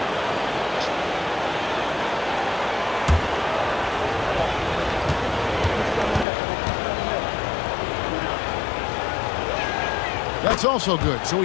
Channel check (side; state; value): right; drops out; at 6.2 s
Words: That's also good, so